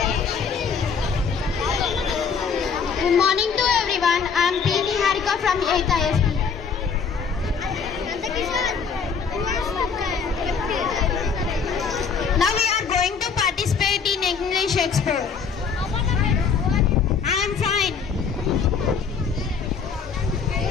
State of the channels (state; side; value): quieter; right; 6.0 dB